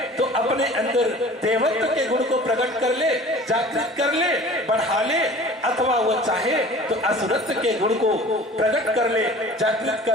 तो अपने अंदर देवत्व के गुण को प्रकट कर ले, जागृत कर ले, बढ़ा ले, अथवा वह चाहे तो असुरत्व के गुण को प्रकट कर ले, जागृत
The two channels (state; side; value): normal; both; correlation 0.44